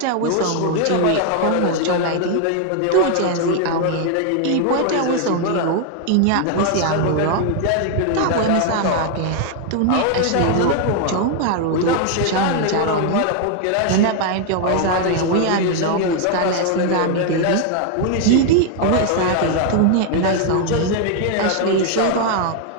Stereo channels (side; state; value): both; different; correlation 0.00